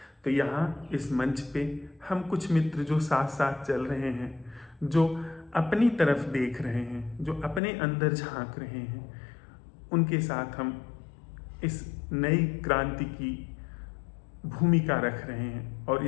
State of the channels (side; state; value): right; drops out; at 7.6 s